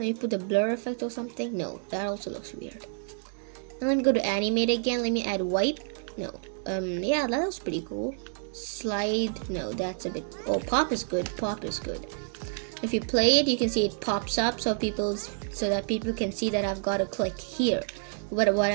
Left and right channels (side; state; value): left; silent; 59 dB below the other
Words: put the blur effect or something. No, that also looks weird. And let me go to animate again. Let me add wipe. No. Yeah, that looks pretty cool. Slide. No, that's a bit. Oh, pop is good. Pop is good. If you play it, you can see it pops up so that people can see that I've got to click here. What